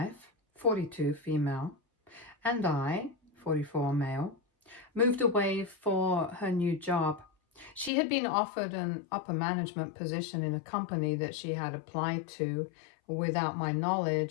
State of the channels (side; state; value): right; drops out; at 7.9 s